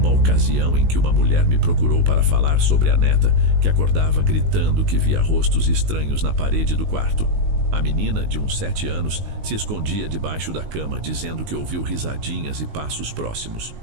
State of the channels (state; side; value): late; left; 19 ms